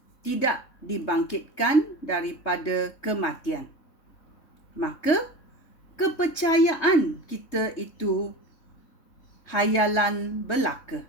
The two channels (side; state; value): right; late; 3.2 ms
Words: tidak dibangkitkan daripada kematian, maka kepercayaan kita itu hayalan belaka